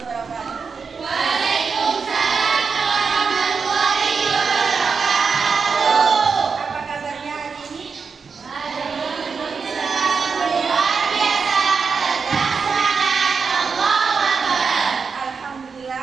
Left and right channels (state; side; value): quieter; left; 5.4 dB